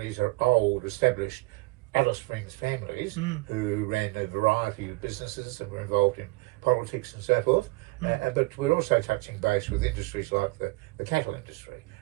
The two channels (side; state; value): left; quieter; 23.9 dB